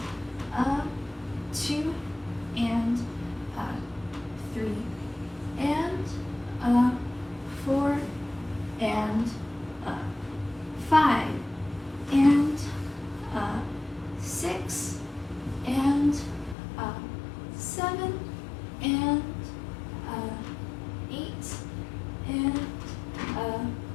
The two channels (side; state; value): right; drops out; at 16.6 s